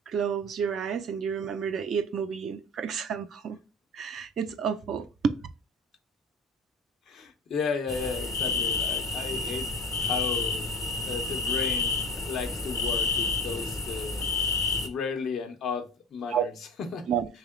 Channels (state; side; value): normal; both; correlation 0.32